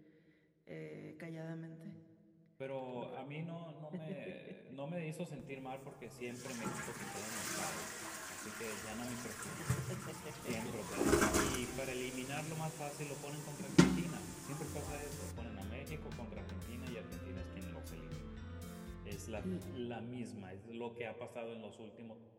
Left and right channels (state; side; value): identical; both; correlation 1.00